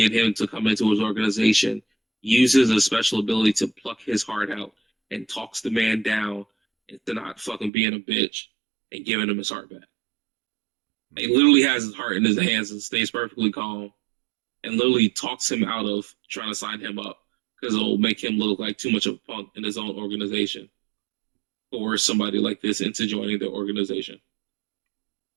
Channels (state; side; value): drops out; left; at 7.7 s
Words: him to come into his organization, uses a special ability to pluck his heart out and talks the man down into not fucking being a bitch and giving him his heart back. He literally has his heart in his hands and stays perfectly calm and literally talks him out of trying to sign him up because it'll make him look like too much of a punk in his own organization or somebody like this into joining the organization.